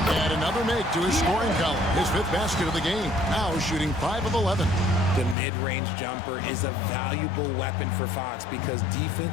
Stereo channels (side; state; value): right; drops out; at 5.4 s